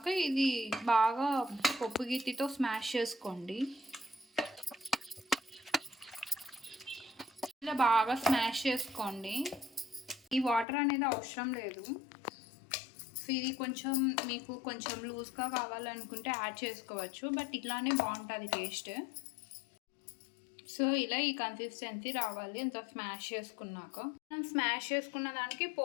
ఇది బాగా పప్పు గిత్తితో స్మాష్ చేసుకోండి. ఇలా బాగా స్మాష్ చేసుకోండి. ఈ వాటర్ అనేది అవసరం లేదు. సో ఇది కొంచెం మీకు కొంచెం లూజ్గా కావాలనుకుంటే యాడ్ చేసుకోవచ్చు, బట్ ఇట్లానే బాగుంటుంది టేస్ట్. సో ఇలా ఈ కన్సిస్టెన్సీ రావాలి అంత స్మాష్ చేసుకున్నాక. మనం స్మాష్ చేసుకున్న దానికి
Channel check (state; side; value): drops out; right; at 10.7 s